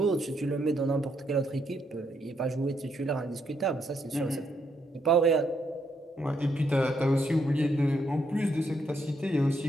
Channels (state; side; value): normal; both; correlation 0.76